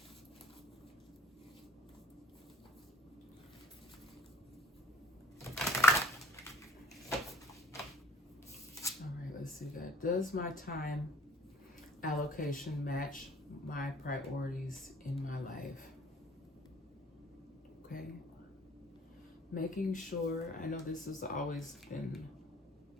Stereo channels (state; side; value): normal; both; correlation 0.52